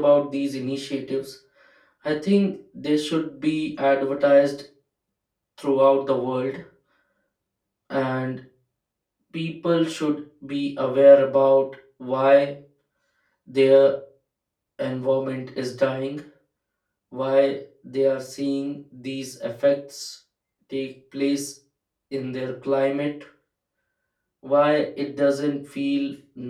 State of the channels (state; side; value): identical; both; correlation 1.00